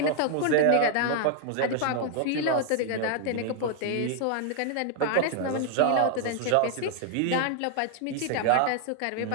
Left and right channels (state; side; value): different; both; correlation 0.00